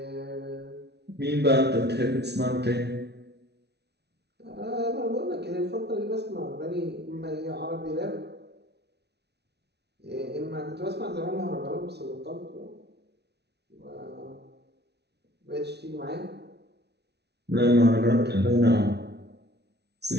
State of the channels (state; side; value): late; left; 0.49 ms